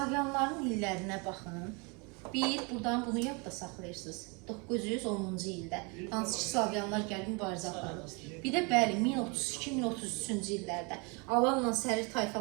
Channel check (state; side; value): quieter; left; 31.2 dB